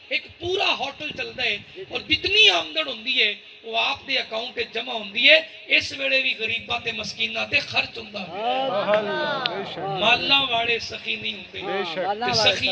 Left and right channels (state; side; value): identical; both; correlation 1.00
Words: ایک پورا ہوٹل چلدا ہے اور جتنی آمدن ہوندی ہے وہ آپ دے اکاؤنٹ تے جمع ہوندی ہے اس ویلے بھی غریباں تے مسکیناں تے خرچ ہوندا ہے مالاں والے سخی نہیں ہوندے تے